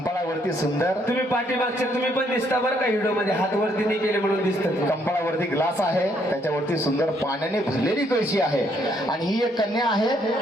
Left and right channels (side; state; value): both; normal; correlation 0.70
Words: सुंदर, तुम्ही पाठीमागचे तुम्ही पण दिसता बरं का व्हिडिओ मध्ये, हात वरती नाही केले म्हणून दिसतात. कंपाळावरती ग्लास आहे, त्याच्यावरती सुंदर पाण्याने भरलेली कळशी आहे आणि ही एक कन्या आहे.